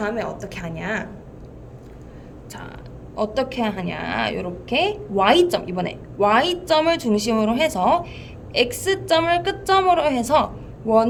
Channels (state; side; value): identical; both; correlation 1.00